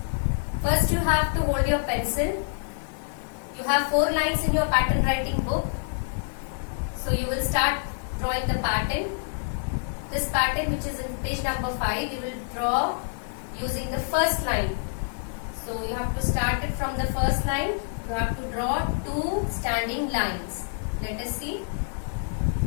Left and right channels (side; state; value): right; silent; digital silence